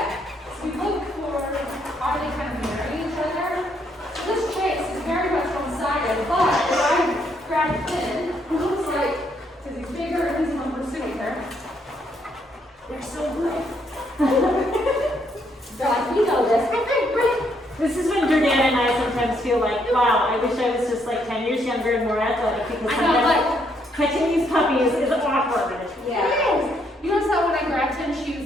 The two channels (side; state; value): both; normal; correlation 0.73